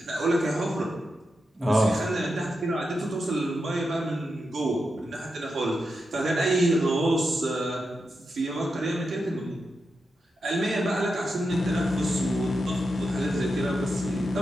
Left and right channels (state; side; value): normal; both; correlation 0.87